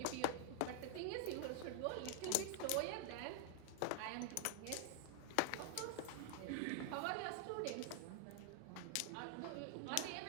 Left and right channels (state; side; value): different; both; correlation 0.00